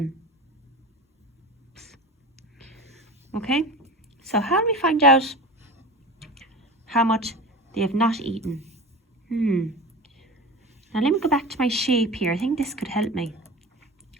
Okay? So how do we find out how much they have not eaten? Now let me go back to my shape here. I think this could help me.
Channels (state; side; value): normal; both; correlation 0.31